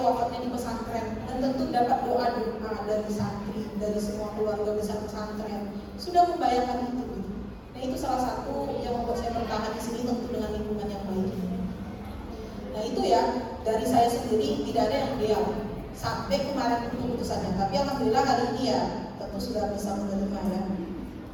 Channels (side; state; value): both; identical; correlation 1.00